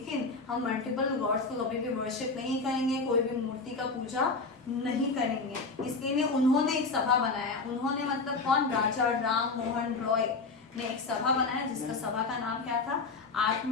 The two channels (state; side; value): quieter; right; 4.0 dB